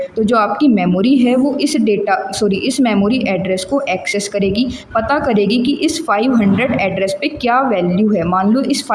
तो जो आपकी मेमोरी है वो इस मेमोरी एड्रेस को एक्सेस करेगी, पता करेगी कि इस 500 एड्रेस पे क्या वैल्यू है। मान लो इस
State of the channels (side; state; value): both; identical; correlation 1.00